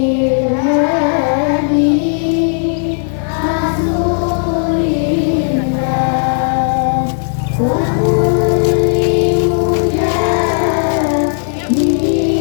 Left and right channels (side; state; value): right; silent; digital silence